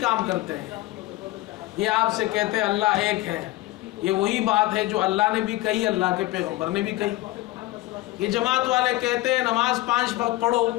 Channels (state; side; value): quieter; right; 17.9 dB